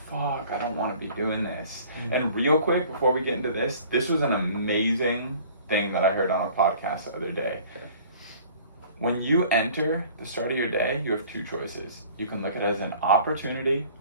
fuck, I don't want to be doing this. Mm-hmm. And real quick, before we get into this was an amazing thing that I heard on a podcast the other day. Okay. When you enter the start of your day, you have 2 choices. You can look at it as an opportunity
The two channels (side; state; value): both; inverted; correlation -0.50